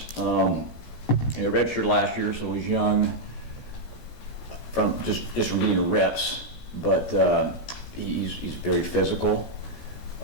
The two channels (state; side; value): late; right; 16 ms